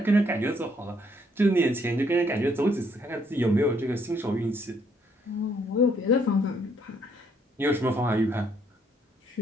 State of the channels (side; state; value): both; normal; correlation 0.69